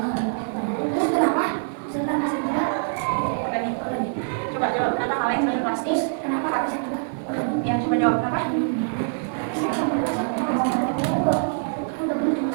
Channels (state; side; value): silent; left; digital silence